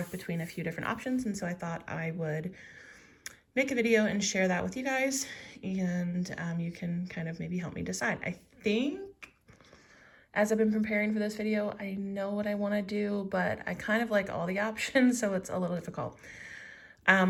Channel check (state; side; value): identical; both; correlation 1.00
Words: between a few different options, and so I thought I would make a video and share that with you guys, and you can kind of maybe help me decide. I think as I've been preparing for this video, I know what I want to do, but I kind of like all the options, so it's a little difficult.